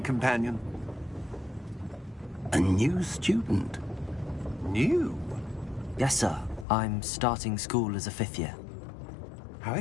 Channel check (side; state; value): right; drops out; at 6.7 s